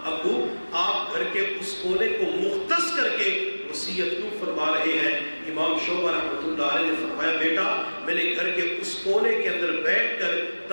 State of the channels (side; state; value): both; inverted; correlation -1.00